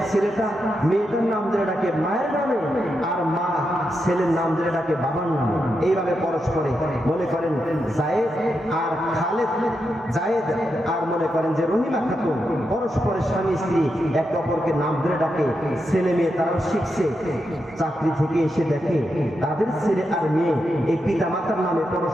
ছেলেটা মেয়েটার নাম ধরে ডাকে মায়ের নামে, আর মা ছেলের নাম ধরে ডাকে বাবার নামে। এইভাবে পরস্পরে মনে করেন জায়েদ আর খালেদ, জায়েদ আর মনে করেন যে রহিমা খাতুন, পরস্পরের স্বামী স্ত্রী একে অপরকে নাম ধরে ডাকে। ছেলে মেয়ে তারাও শিখছে, চাকরি থেকে এসে দেখে তাদের ছেলে আর মেয়ে এই পিতা মাতার নামে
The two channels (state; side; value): normal; both; correlation 0.85